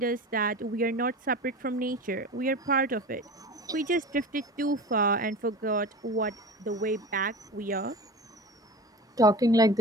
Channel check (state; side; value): normal; both; correlation 0.32